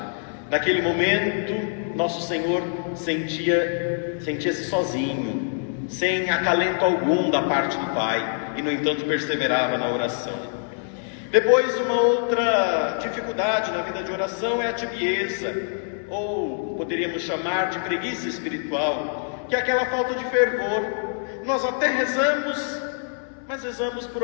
Naquele momento, nosso Senhor sentia-se sozinho, sem acalento algum da parte do Pai, e no entanto perseverava na oração. Depois, uma outra dificuldade na vida de oração é a tibieza, ou poderíamos chamar de preguiça espiritual, que é aquela falta de fervor. Nós até rezamos, mas rezamos por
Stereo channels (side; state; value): right; silent; 62 dB below the other